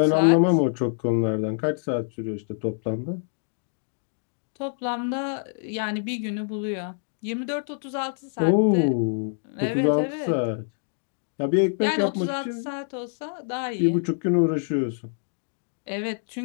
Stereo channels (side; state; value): right; silent; digital silence